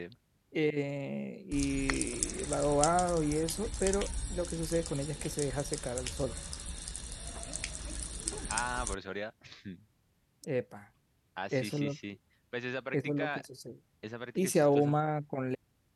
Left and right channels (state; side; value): identical; both; correlation 1.00